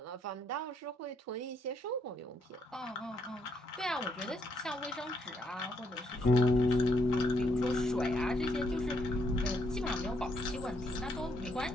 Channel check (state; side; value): normal; both; correlation 0.74